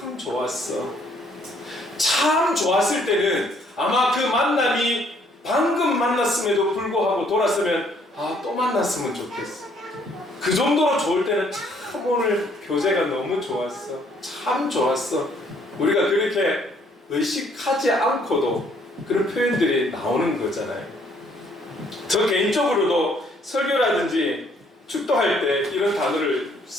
좋았어. 참 좋았을 때는 아마 그 만남이 방금 만났음에도 불구하고 돌았으면 또 만났으면 좋겠어. 그 정도로 좋을 때는 참 오늘 교제가 너무 좋았어. 참 좋았어. 우리가 그렇게 의식하지 않고도 그런 표현들이 나오는 거잖아요. 저 개인적으로도 설교라든지 축도할 때 이런 단어를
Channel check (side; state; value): both; normal; correlation 0.65